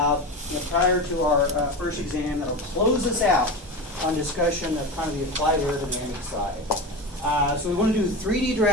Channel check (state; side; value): normal; both; correlation 0.24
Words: prior to our first exam that will close us out on discussion of kind of the applied aerodynamic side. So we want to do 3D